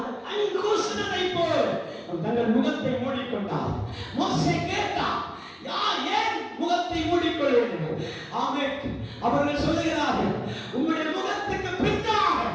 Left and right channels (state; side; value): identical; both; correlation 1.00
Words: கண் கூசுனதை போல் தங்கள் முகத்தை மூடிக்கொண்டார். மோசே கேட்டார், யார் ஏன் முகத்தை மூடிக்கொள்வீர்கள்? ஆமென். அவர்கள் சொல்லுகிறார்கள், உங்களுடைய முகத்துக்கு பின்னாக